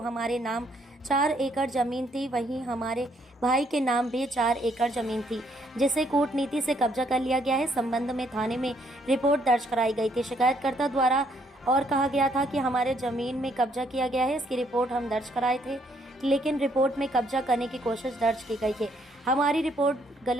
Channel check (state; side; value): normal; both; correlation 0.70